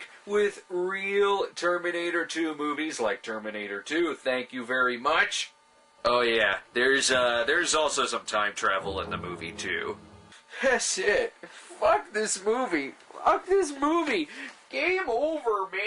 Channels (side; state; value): both; identical; correlation 1.00